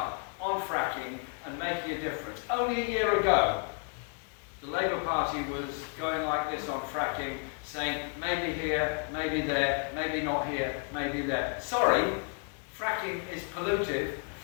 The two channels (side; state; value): right; quieter; 39.1 dB